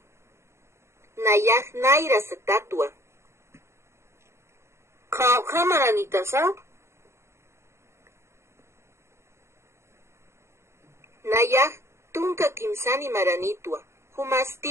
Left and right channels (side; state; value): left; late; 0.13 ms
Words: Nayaj Naira satatua. Kamaranitasa. Nayaj tunka kimsani maranitua.